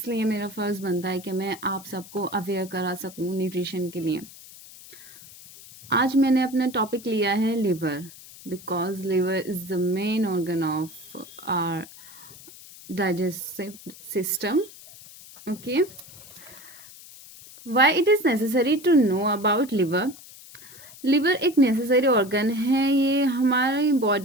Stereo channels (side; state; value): left; noise; hiss, 19 dB below the sound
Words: मेरा फ़र्ज़ बनता है कि मैं आप सबको अवेयर करा सकूँ न्यूट्रिशन के लिए. आज मैंने अपना टॉपिक लिया है liver because liver is the main organ of our digestive system. Okay, why it is necessary to know about liver. Liver एक नेसेसरी ऑर्गन है. ये हमारी